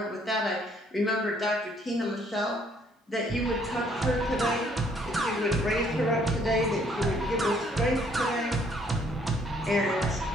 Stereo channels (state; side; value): normal; both; correlation 0.65